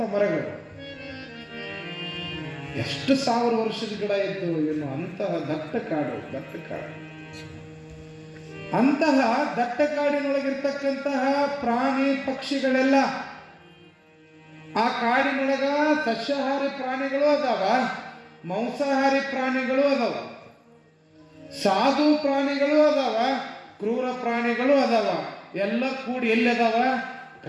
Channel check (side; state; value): both; identical; correlation 1.00